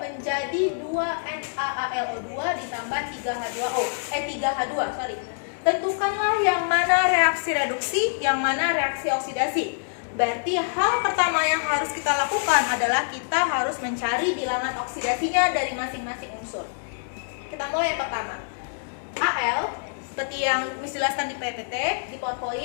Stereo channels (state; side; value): silent; right; digital silence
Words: 2NaAlO2 ditambah 3H2O. 3H2, sorry. Tentukanlah yang mana reaksi reduksi, yang mana reaksi oksidasi. Berarti hal pertama yang harus kita lakukan adalah kita harus mencari bilangan oksidasinya dari masing-masing unsur. Kita mulai yang pertama. Al, seperti yang dijelaskan di PPT, di